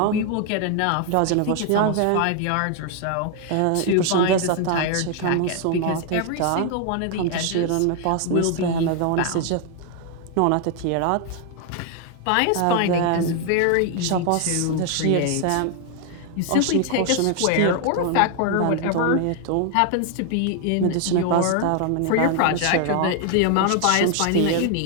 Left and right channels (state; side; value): different; both; correlation 0.01